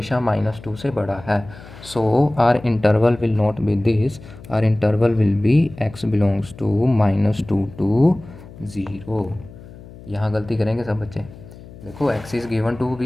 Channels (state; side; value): noise; left; hum, 18 dB below the sound